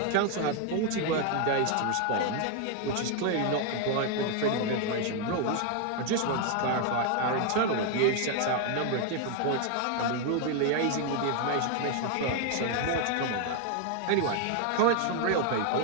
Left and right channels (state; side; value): different; both; correlation 0.01